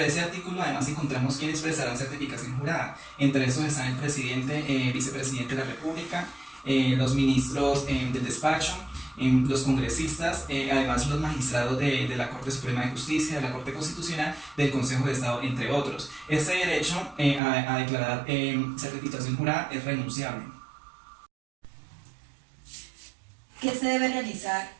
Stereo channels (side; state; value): left; drops out; at 17.4 s